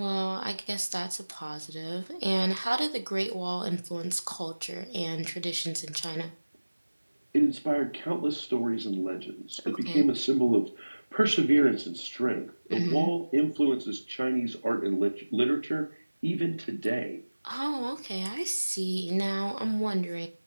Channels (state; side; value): inverted; both; correlation -1.00